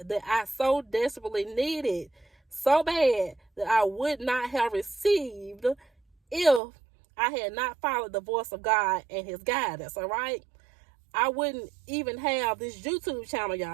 that I so desperately needed, so bad that I would not have received if I had not followed the voice of God and his guidance, all right? I wouldn't even have this YouTube channel,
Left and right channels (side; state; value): left; drops out; at 6.6 s